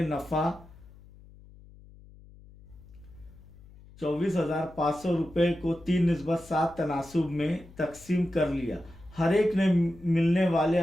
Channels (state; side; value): noise; left; hum, 22 dB below the sound